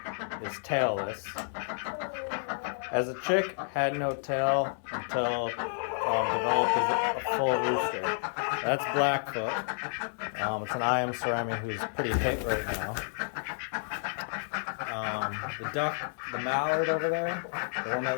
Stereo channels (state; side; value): silent; right; 57 dB below the other